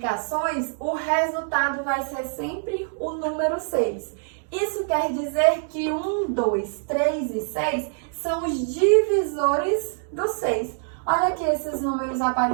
o resultado vai ser sempre o número 6. Isso quer dizer que 1, 2, 3 e 6 são os divisores do 6. Olha aqui esses números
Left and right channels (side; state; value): left; silent; digital silence